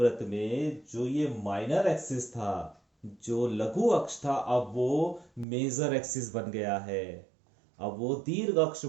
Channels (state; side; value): drops out; left; at 5.5 s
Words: में जो ये माइनर एक्सिस था, जो लघु अक्ष था, अब वो मेजर एक्सिस बन गया है, अब वो दीर्घ अक्ष